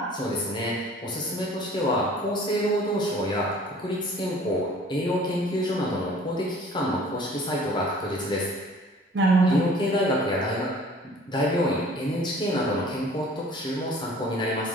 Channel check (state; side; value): normal; both; correlation 0.50